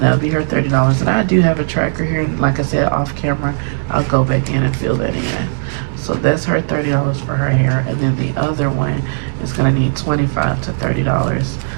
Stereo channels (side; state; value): left; silent; digital silence